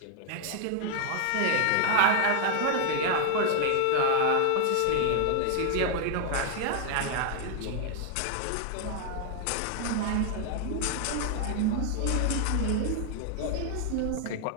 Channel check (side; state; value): both; different; correlation 0.00